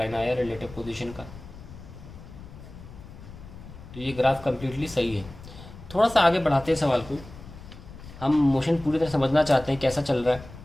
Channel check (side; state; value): left; noise; rumble, 16 dB below the sound